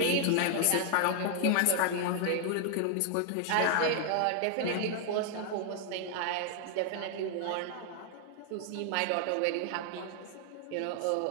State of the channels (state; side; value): different; both; correlation 0.00